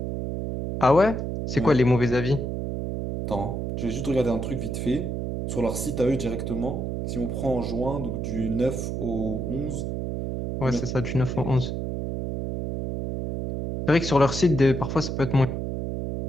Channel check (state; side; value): noise; right; hum, 3 dB below the sound